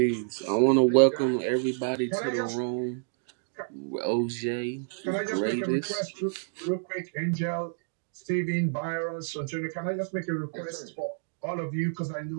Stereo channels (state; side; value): silent; left; digital silence